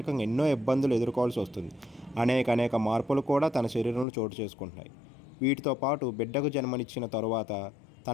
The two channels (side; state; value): right; drops out; at 4.0 s